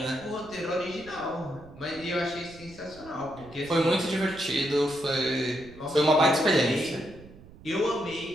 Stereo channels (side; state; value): right; noise; rumble, 20 dB below the sound